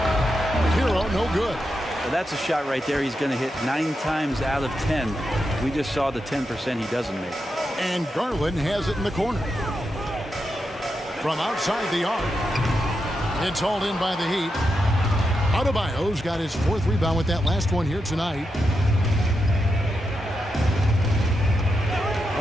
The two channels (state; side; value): normal; both; correlation 0.86